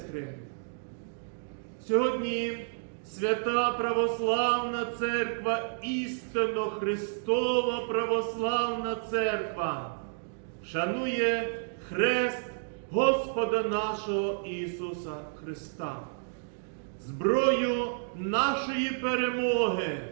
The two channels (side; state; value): left; silent; digital silence